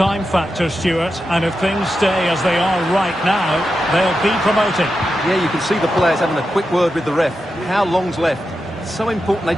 factor, Stuart, and if things stay as they are right now, they'll be promoted. Yeah, you can see the players having a quick word with the ref. How long's left? It's so important they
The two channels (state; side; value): normal; both; correlation 0.89